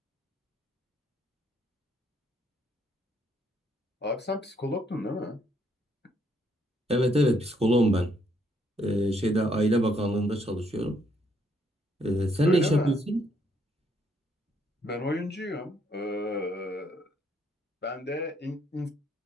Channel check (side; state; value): both; normal; correlation 0.71